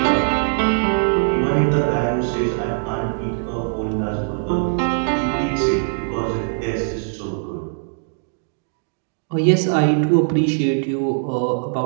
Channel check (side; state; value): left; silent; digital silence